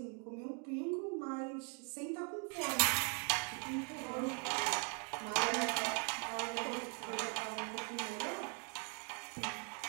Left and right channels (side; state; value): left; quieter; 39.2 dB